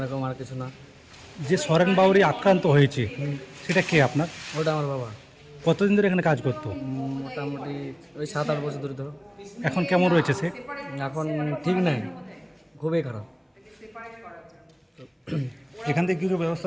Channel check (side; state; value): both; identical; correlation 1.00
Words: রকম আর কিছু না। যে সরেন বাউরি আক্রান্ত হয়েছে সেটা কে আপনার? ওটা আমার বাবা। কতদিন ধরে এখানে কাজ করতো? মোটামুটি ওই 7-8 বছর ধরে ধরো। এখন কেমন রয়েছে সে? এখন ঠিক নাই, খুবই খারাপ। এখান থেকে কিছু